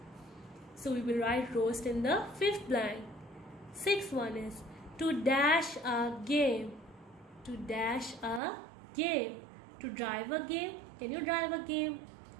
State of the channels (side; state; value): left; drops out; at 8.4 s